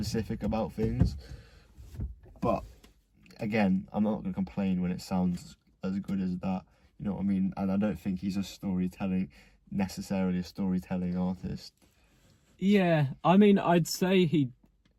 about things. But again, I'm not going to complain when it sounds as good as that. You know what I mean? And I don't think he's necessarily a storytelling artist. Yeah, I mean, I'd say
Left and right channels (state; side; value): identical; both; correlation 1.00